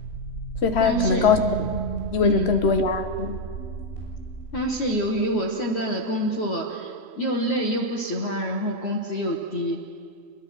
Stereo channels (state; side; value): late; right; 3.1 ms